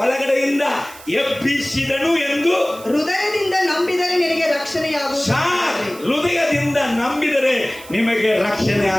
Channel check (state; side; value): noise; right; hiss, 19 dB below the sound